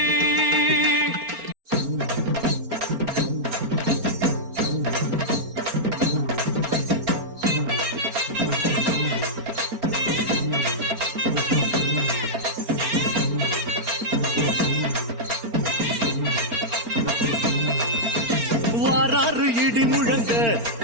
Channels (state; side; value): late; left; 4.4 ms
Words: வாராறு இடி முழங்க